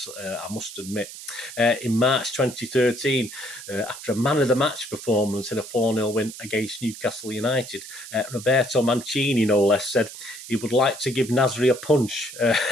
I must admit. In March 2013, after a man-of-the-match performance in a 4-0 win against Newcastle United, Roberto Mancini, no less, said he would like to give Nasri a punch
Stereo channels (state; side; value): noise; right; hiss, 13 dB below the sound